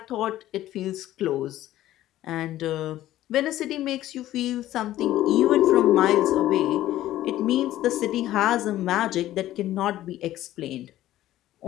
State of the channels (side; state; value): right; quieter; 14.1 dB